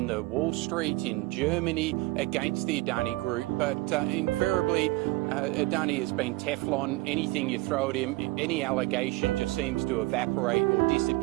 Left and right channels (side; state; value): left; quieter; 20.6 dB